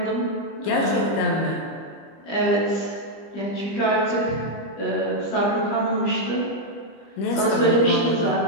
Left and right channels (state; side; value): late; right; 25 ms